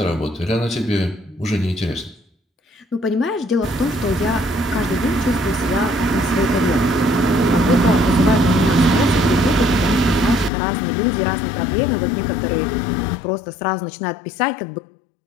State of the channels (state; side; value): drops out; right; at 10.5 s